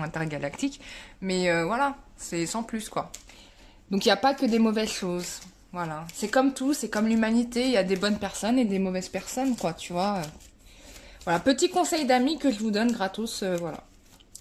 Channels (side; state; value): both; identical; correlation 1.00